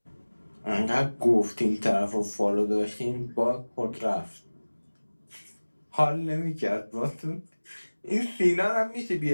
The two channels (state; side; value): inverted; both; correlation -1.00